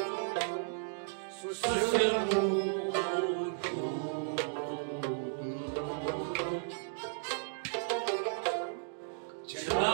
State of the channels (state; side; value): silent; left; digital silence